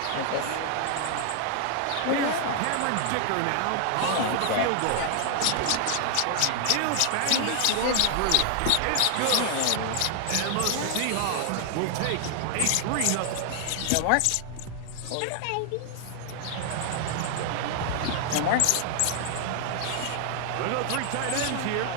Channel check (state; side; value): different; both; correlation 0.00